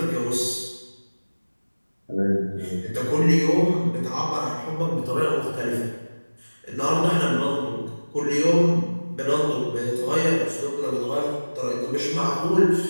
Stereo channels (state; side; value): inverted; both; correlation -1.00